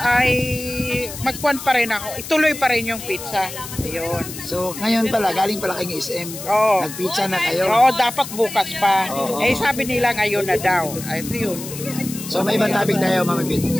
magkuhan pa rin ako. Ituloy pa rin yung pizza. Ayun. So ngayon pala galing pala kay SM. Nagpizza na kayo. Oo, dapat bukas pa. Sabi nila ngayon na daw. Ay yun. So may ibang topic tayo, Mama Bet.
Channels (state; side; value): noise; left; hiss, 11 dB below the sound